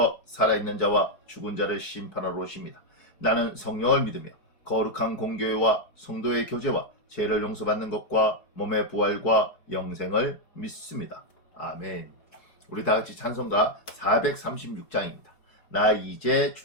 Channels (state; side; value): late; right; 4.7 ms